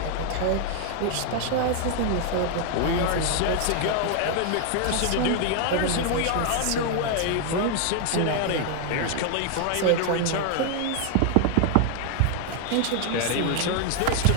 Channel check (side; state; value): both; different; correlation 0.00